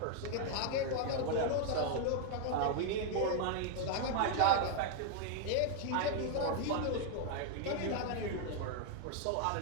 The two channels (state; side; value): different; both; correlation 0.00